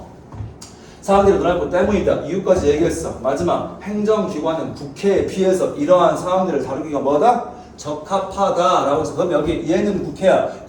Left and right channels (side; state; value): both; identical; correlation 1.00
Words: 사람들이 놀고 때문이다. 이유까지 얘기했어. 마지막. 행정기관은 국회에 비해서 이러한 사람들을 다루기가 뭐다? 적합하다라고 해서 그럼 여기 얘는 국회야.